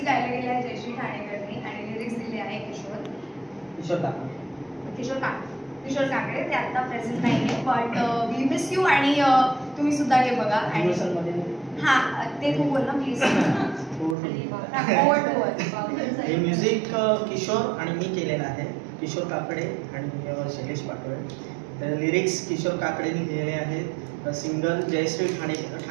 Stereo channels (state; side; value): drops out; left; at 14.2 s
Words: गायला गेलं आहे जयश्री ठाणेकरनी आणि लिरिक्स दिले आहे किशोर काकडे. ते आता प्रेझेंट नाहीये, बट वी मिस यू. आणि तुम्ही सुद्धा हे बघा. आणि हा ते तू बोल ना प्लीज. हे म्युझिक किशोर आणि मी केलेलं आहे, किशोर काकडे आणि शैलेश पाटोळे. तर लिरिक्स किशोर काकडेंनी लिहिलेले आहेत. सिंगल जयश्री